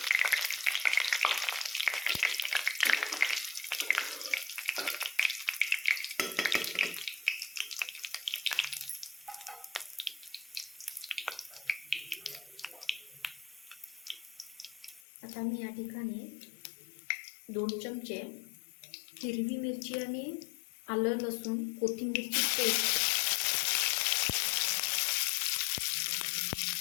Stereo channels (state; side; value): drops out; right; at 15.0 s